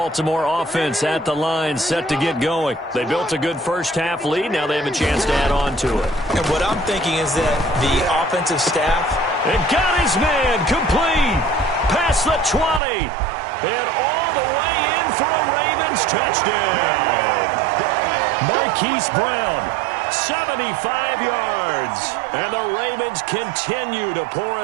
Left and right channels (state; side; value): drops out; left; at 12.8 s